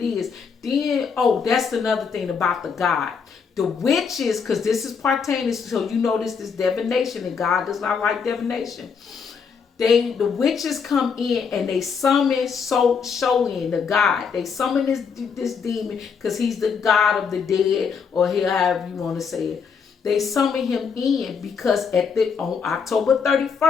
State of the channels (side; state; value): right; quieter; 6.0 dB